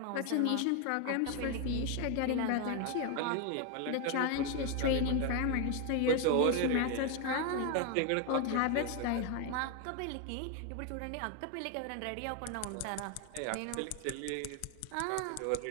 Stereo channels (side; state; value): both; different; correlation 0.01